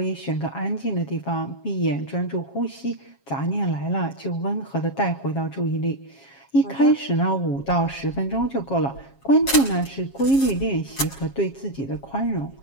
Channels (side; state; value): right; late; 7.4 ms